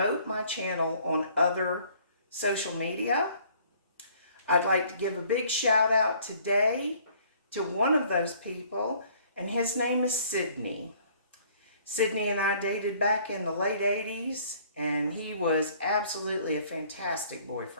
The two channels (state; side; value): inverted; both; correlation -0.58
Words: my channel on other social media. I'd like to give a big shout out today to one of those people, and his name is Sydney. Sydney and I dated back in the late 80s, and he was absolutely a fantastic